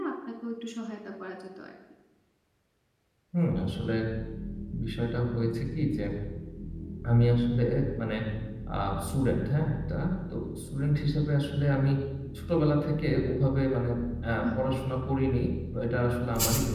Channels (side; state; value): both; identical; correlation 1.00